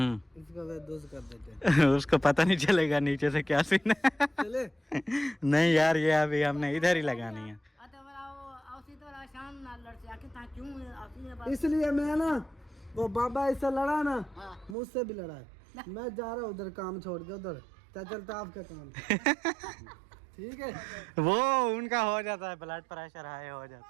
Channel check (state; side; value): drops out; left; at 14.8 s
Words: इसको वे दोस्त कर देते हैं। उसको पता नहीं चलेगा नीचे से क्या सीन है। चले नहीं यार ये अभी हमने इधर ही लगानी है। इसलिए मैं ना वो बाबा इससे लड़ा ना, मुझसे भी लड़ा है। मैं जा रहा हूँ उधर काम छोड़ के, उधर चलता आपका काम। ठीक है, वो उनका हो जाता है, ब्लड प्रेशर हाई हो